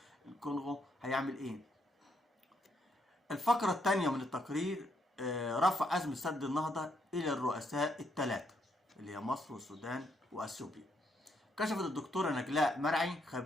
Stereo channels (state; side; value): normal; both; correlation 0.75